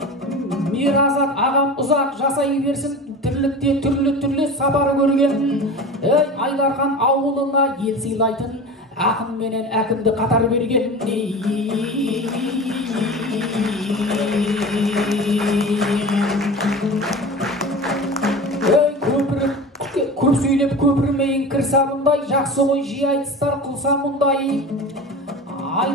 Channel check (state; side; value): normal; both; correlation 0.32